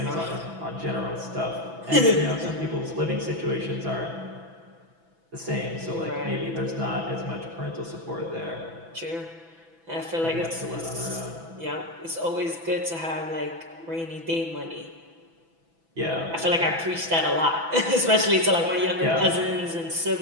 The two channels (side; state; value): left; late; 6.0 ms